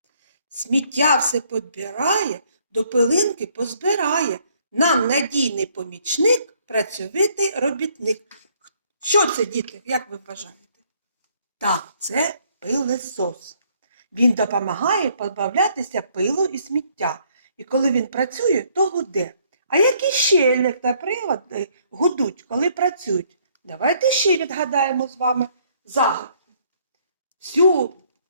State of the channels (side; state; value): both; inverted; correlation -0.65